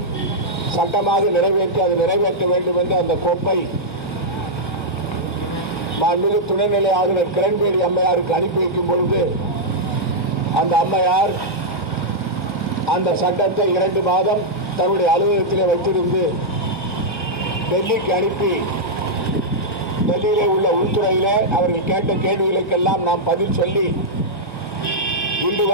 சட்டமாக நிறைவேற்ற வேண்டும் என்ற அந்த கோப்பை மாண்புமிகு துணைநிலை ஆளுநர் கிரண்பேடி அம்மையாருக்கு அனுப்பி வைக்கும் பொழுது அந்த அம்மையார் அந்த சட்டத்தை 2 மாதம் தன்னுடைய அலுவலகத்திலே வைத்திருந்து டெல்லிக்கு அனுப்பி, டெல்லியிலே உள்ள உள்துறையிலே அவர்கள் கேட்ட கேள்விகளுக்கெல்லாம் நாம் பதில் சொல்லி இன்று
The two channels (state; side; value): late; right; 1.1 ms